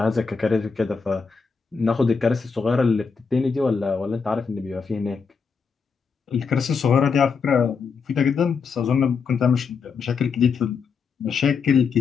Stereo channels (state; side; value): quieter; right; 5.4 dB